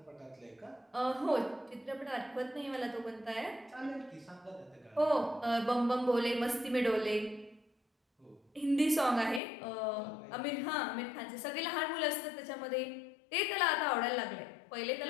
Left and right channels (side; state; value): right; drops out; at 9.4 s